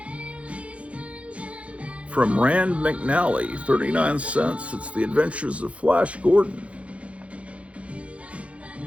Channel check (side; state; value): left; late; 0.063 ms